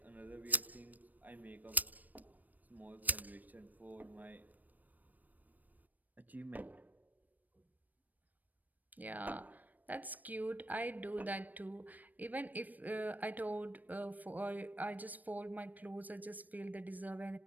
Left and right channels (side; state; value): left; late; 0.084 ms